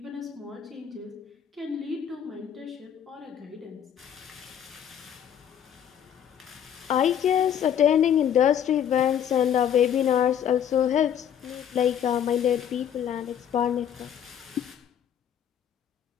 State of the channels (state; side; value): quieter; right; 9.3 dB